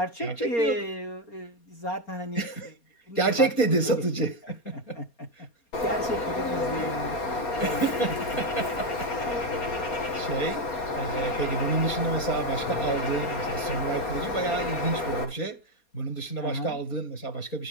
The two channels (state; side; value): late; right; 4.2 ms